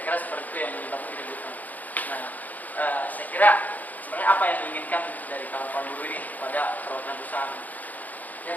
kira seperti itu yang menyebabkan keributan. Nah, saya kira sebenarnya apa yang diinginkan dari kawan-kawan buruh ini pada perwakilan perusahaan? Ya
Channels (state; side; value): late; right; 0.080 ms